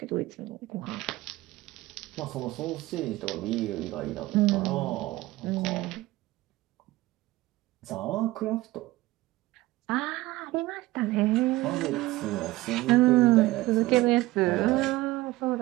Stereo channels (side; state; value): left; quieter; 18.4 dB